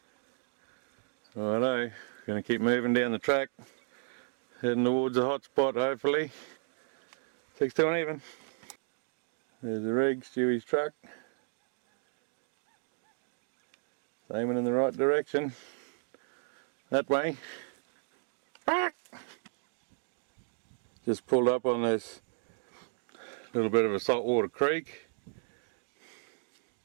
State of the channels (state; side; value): silent; left; 55 dB below the other